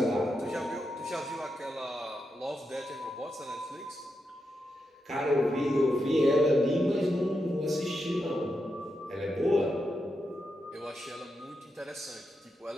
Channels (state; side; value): normal; both; correlation 0.86